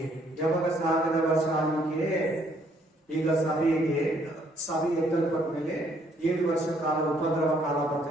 ಯಾವಾಗ 1000 ವರ್ಷ ಆಳ್ವಿಕೆ? ಈಗ ಸಭೆ ಎತ್ತಲ್ಪಟ್ಟ ಮೇಲೆ 7 ವರ್ಷ ಕಾಲ ಉಪದ್ರವ ಕಾಲ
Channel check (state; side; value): normal; both; correlation 0.67